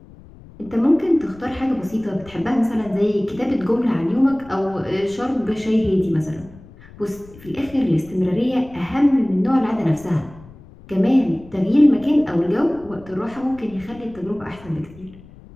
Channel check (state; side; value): noise; left; rumble, 21 dB below the sound